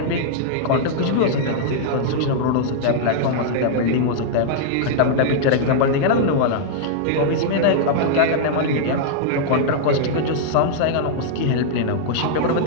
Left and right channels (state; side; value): different; both; correlation -0.02